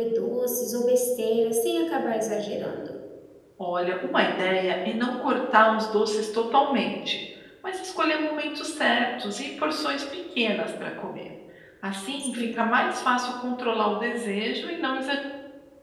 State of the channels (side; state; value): both; identical; correlation 1.00